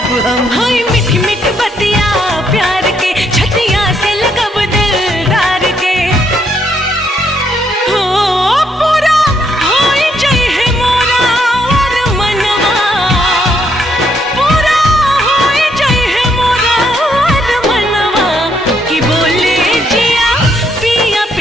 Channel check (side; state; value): both; normal; correlation 0.73